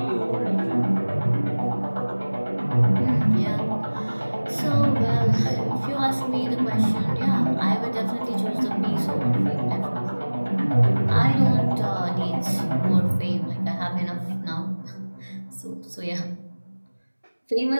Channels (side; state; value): both; inverted; correlation -1.00